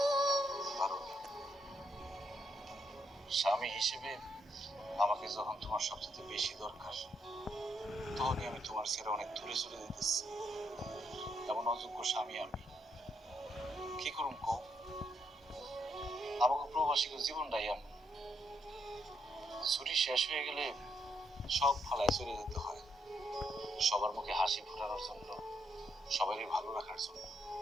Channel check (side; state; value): both; normal; correlation 0.77